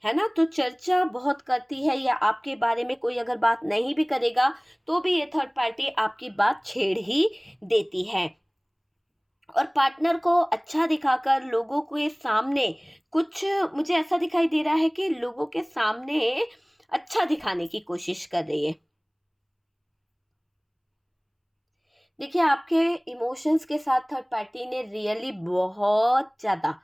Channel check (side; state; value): both; identical; correlation 1.00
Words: है ना। तो चर्चा बहुत करती है, या आपके बारे में कोई अगर बात नहीं भी करेगा तो भी ये थर्ड पार्टी आपकी बात छेड़ ही देती है, और पार्टनर को अच्छा दिखाकर लोगों के सामने कुछ, मुझे ऐसा दिखाई दे रहा है कि लोगों के सामने अच्छा दिखाने की कोशिश कर रही है। देखिए, आपके इमोशंस के साथ थर्ड पार्टी ने रियली बहुत ज़्यादा